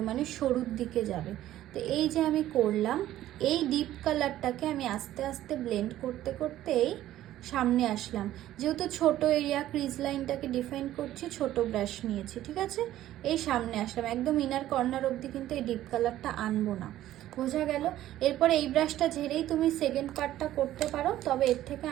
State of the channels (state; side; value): quieter; left; 13.5 dB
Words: মানে সরুর দিকে যাবে। তো এই যে আমি করলাম, এই ডিপ কালারটাকে আমি আস্তে আস্তে ব্লেন্ড করতে করতেই সামনে আসলাম। যেহেতু ছোট এরিয়া ক্রিজ লাইনটাকে ডিফাইন করছি, ছোট ব্রাশ নিয়েছি, ঠিক আছে। এই সামনে আসলাম, একদম ইনার কর্নার অবধি কিন্তু এই ডিপ কালারটা আনবো না, বোঝা গেল। এরপরে এই ব্রাশটা ঝেড়েই তুমি সেকেন্ড পার্টটা করতে পারো, তবে এর থেকে